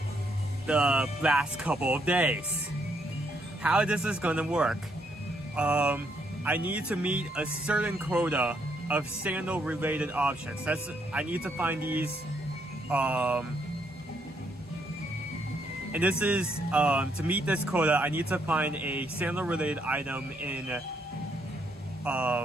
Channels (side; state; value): both; normal; correlation 0.74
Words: the last couple of days. How this is gonna work? I need to meet a certain quota of sandal related options. I need to find these, and this is to meet this quota. I need to find a sandal related item in